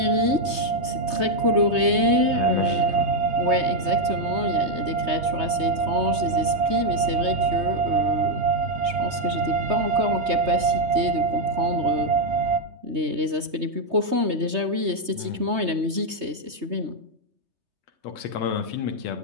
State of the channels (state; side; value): late; left; 3.2 ms